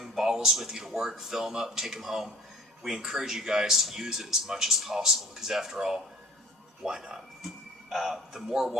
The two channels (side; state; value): both; normal; correlation 0.47